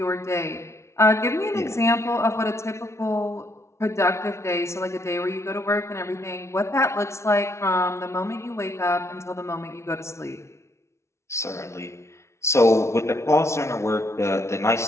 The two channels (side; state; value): right; late; 0.13 ms